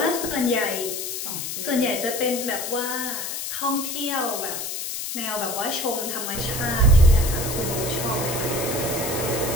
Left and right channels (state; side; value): noise; left; hiss, 5 dB below the sound